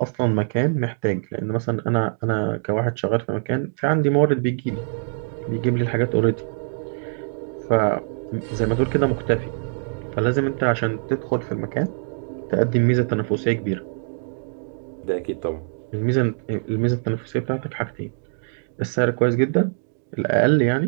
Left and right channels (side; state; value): left; silent; digital silence